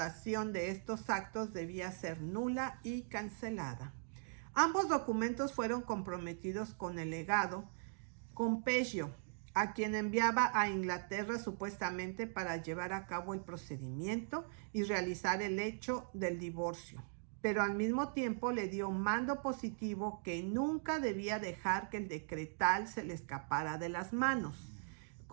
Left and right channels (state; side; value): silent; left; digital silence